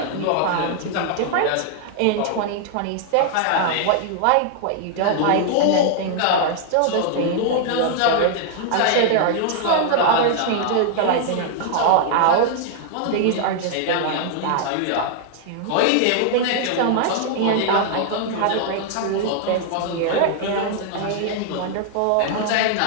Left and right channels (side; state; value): both; different; correlation 0.00